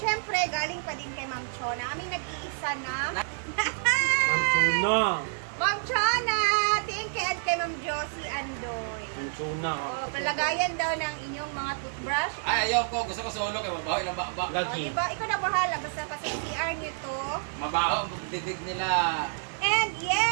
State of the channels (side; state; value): left; silent; digital silence